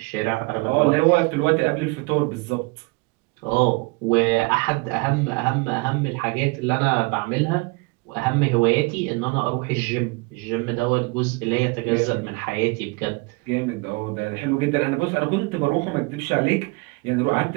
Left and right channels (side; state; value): left; quieter; 27.2 dB